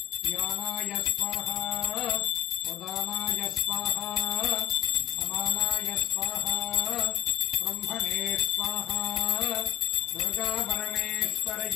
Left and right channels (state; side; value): quieter; right; 12.7 dB